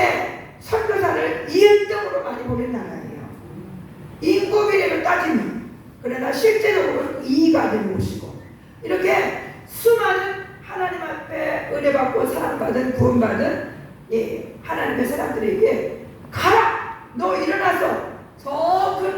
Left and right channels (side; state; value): both; identical; correlation 1.00